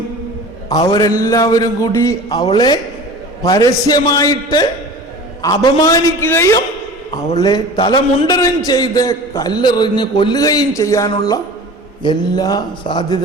അവരെല്ലാവരും കൂടി അവളെ പരസ്യമായിട്ട് അപമാനിക്കുകയും അവളെ തലമുണ്ടനം ചെയ്ത് കല്ലെറിഞ്ഞ് കൊല്ലുകയും ചെയ്യാനുള്ള എല്ലാ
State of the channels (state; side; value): normal; both; correlation 0.39